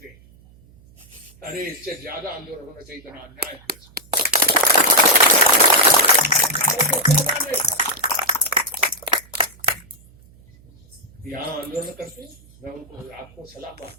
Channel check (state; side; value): noise; right; hum, 26 dB below the sound